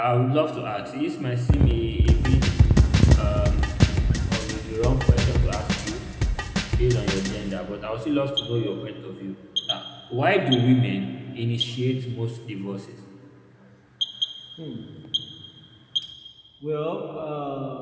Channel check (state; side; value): identical; both; correlation 1.00